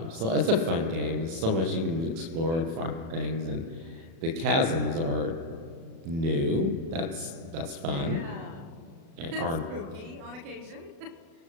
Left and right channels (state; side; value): late; left; 36 ms